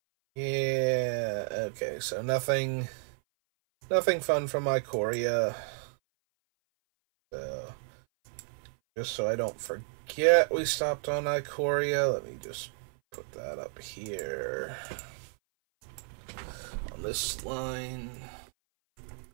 Yeah, okay, so nothing fun from Ikoria. So, just so I don't forget, we stopped on Ikoria. Let me just put that up here on this line.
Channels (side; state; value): left; silent; 56 dB below the other